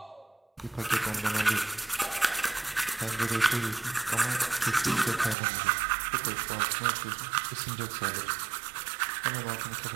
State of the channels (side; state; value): left; drops out; at 5.4 s